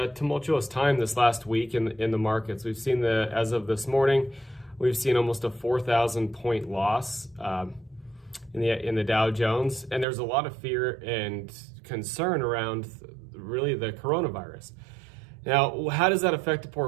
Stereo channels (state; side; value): drops out; left; at 10.1 s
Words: tumultuous time this last week in the markets. We've seen as of this morning, we've seen almost a 4,000 point loss in the Dow Jones, and there's a lot of fear and concern around really the coronavirus. Now, how does that affect the